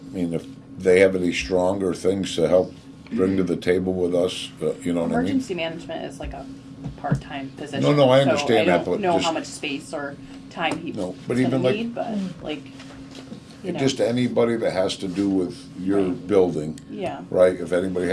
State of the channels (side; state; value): both; identical; correlation 1.00